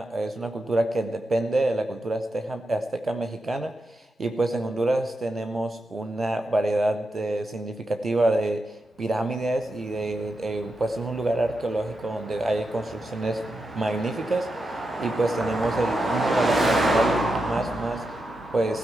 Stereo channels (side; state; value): both; normal; correlation 0.87